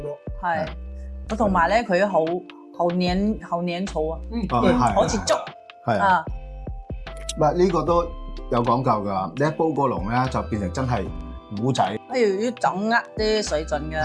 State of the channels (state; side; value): identical; both; correlation 1.00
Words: 係。同埋咧，佢好黏稠啊，好似粥。係啊。唔係呢個都有講究㗎，你一煲過籠咧就變成真係糊仔。要掌握啲水準嘅。